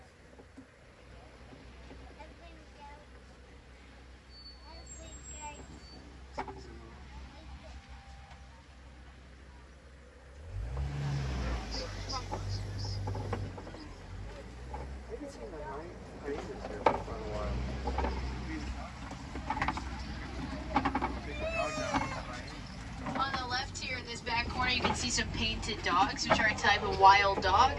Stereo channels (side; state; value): both; identical; correlation 1.00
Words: corner you can see some painted dogs, which are a type of wild dog.